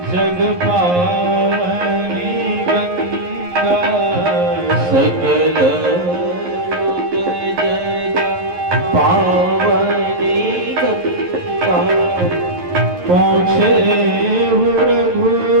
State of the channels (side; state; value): left; late; 11 ms